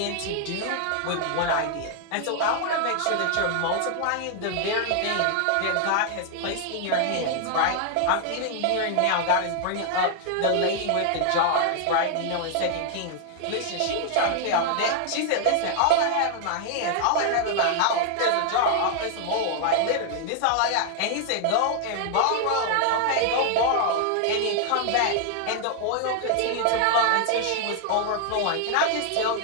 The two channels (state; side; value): different; both; correlation 0.00